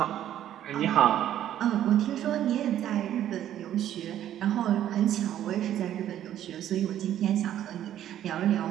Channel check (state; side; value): quieter; left; 11.5 dB